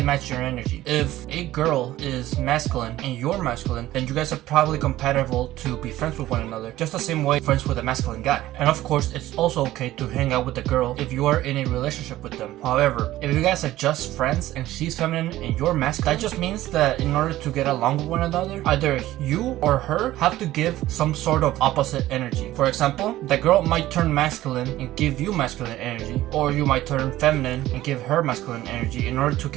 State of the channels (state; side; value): quieter; left; 15.3 dB